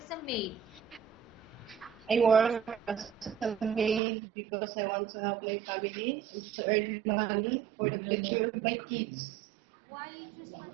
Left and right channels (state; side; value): drops out; left; at 4.0 s